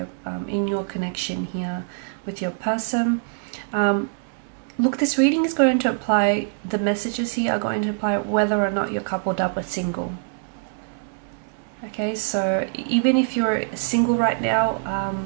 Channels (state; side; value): silent; left; digital silence